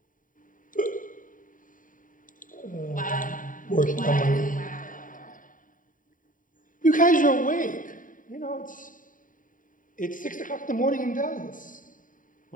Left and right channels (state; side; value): late; right; 0.39 ms